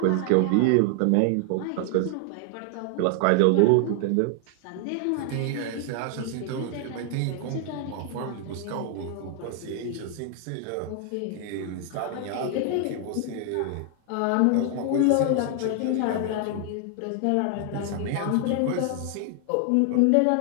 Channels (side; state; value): both; different; correlation 0.00